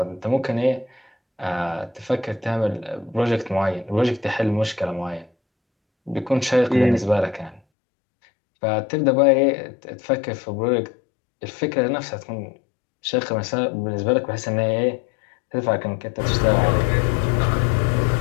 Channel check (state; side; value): drops out; right; at 7.6 s